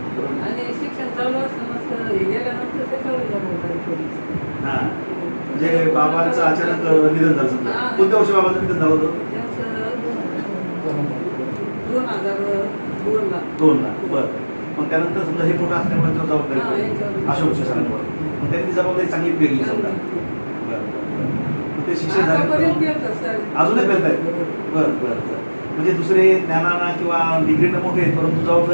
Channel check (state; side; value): inverted; both; correlation -1.00